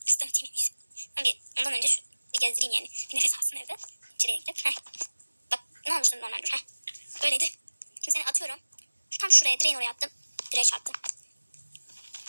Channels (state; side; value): inverted; both; correlation -1.00